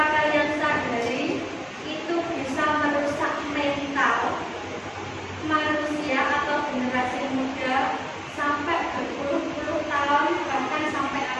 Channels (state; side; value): identical; both; correlation 1.00